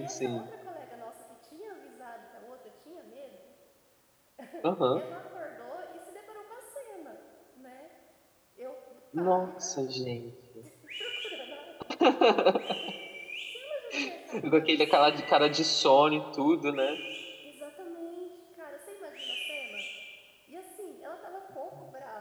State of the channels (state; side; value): identical; both; correlation 1.00